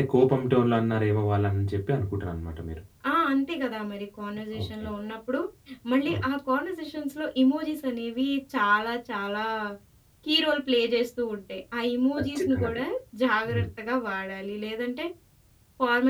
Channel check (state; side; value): identical; both; correlation 1.00